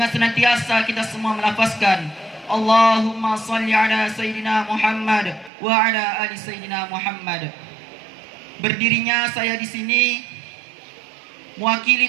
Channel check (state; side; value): drops out; left; at 5.5 s